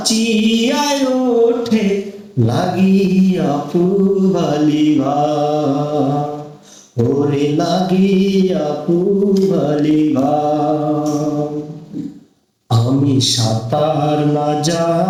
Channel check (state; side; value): identical; both; correlation 1.00